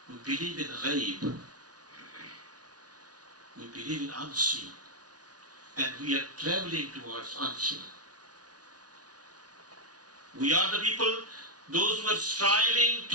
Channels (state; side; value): late; left; 0.69 ms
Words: We believe in ghaib. We believe in unseen. And we are traveling towards unseen. We are the people, those who are striving